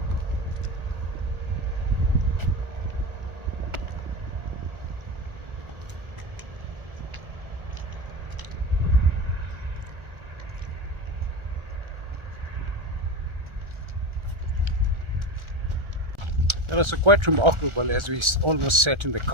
It was quite remarkable. As we almost sat in the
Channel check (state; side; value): late; left; 1.4 ms